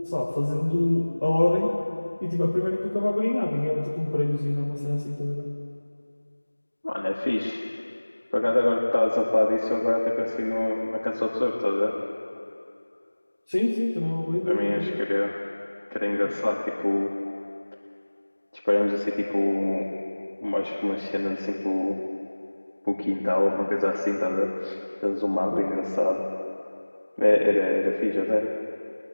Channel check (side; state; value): both; inverted; correlation -1.00